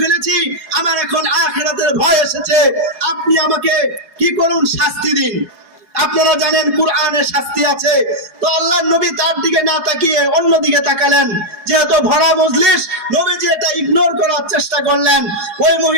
ফেলেছি, আমার এখন আখিরাতের ভয় এসেছে, আপনি আমাকে কি করুন, শাস্তি দিন। আপনারা জানেন কুরআনে শাস্তি আছে। তো আল্লাহর নবী তার দিকে না তাকিয়ে অন্য দিকে তাকালেন। যেহেতু ভরা মজলিস, নবীজি এটা ইগনোর করার চেষ্টা করলেন। ওই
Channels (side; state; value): left; late; 4.8 ms